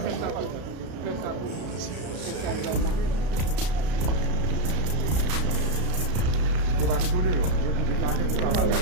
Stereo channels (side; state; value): left; late; 33 ms